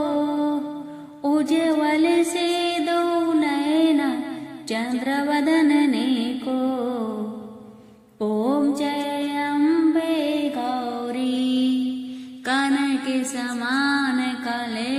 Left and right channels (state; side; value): identical; both; correlation 1.00